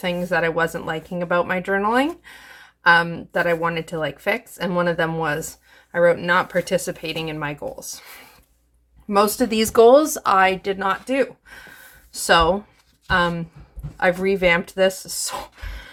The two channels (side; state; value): both; identical; correlation 1.00